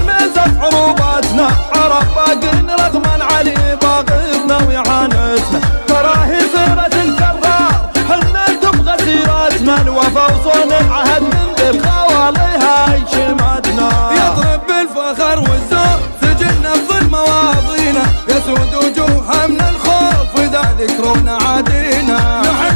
عروباتنا عرف باقين رغما علي باغينا ويعانسنا تراهي صيرة الكرار حنا تبغى سيرتنا الوفا وصون العهد من ذي الخوالي هاي شماتنا يضرب بالفخر والزور سجلنا بظل مواضينا يسود وجوهها من الخوف واذا ذكرونا عادينا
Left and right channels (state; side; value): inverted; both; correlation -1.00